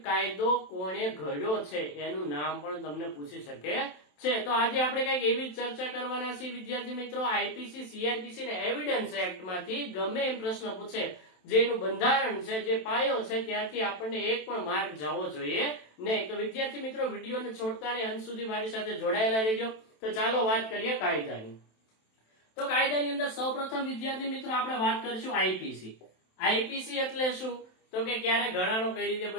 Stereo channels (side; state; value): right; late; 27 ms